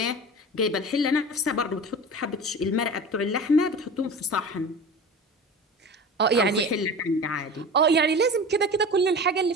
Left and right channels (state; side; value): normal; both; correlation 0.34